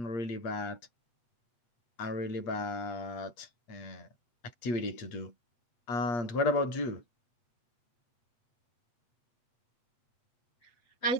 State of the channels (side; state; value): right; late; 8.5 ms